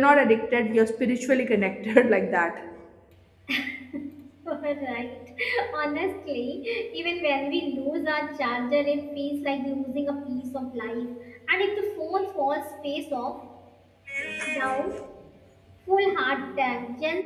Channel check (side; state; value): both; identical; correlation 1.00